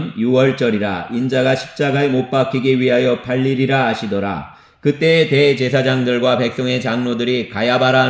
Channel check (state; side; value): identical; both; correlation 1.00